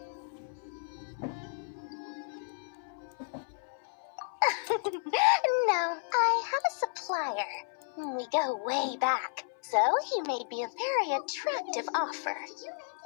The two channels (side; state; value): right; silent; 56 dB below the other